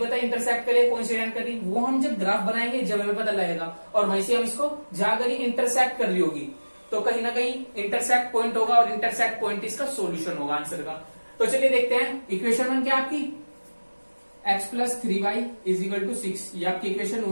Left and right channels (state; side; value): inverted; both; correlation -1.00